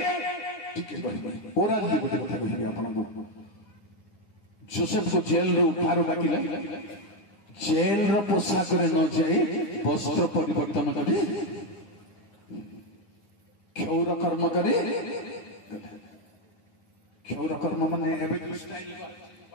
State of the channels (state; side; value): late; right; 9.5 ms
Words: जोसेफ को जेल रे उठारो डाकिले जेल रो पोशाक रे न जाई वस्त्र परिवर्तन करी क्षौर कर्म करे क्षौर कर्म माने एबे जो स्टाइल